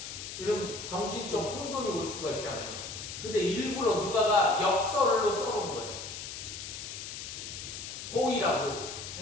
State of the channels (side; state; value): left; noise; hiss, 8 dB below the sound